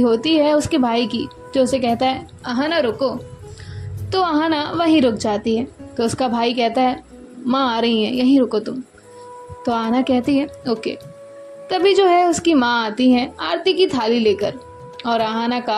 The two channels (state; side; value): identical; both; correlation 1.00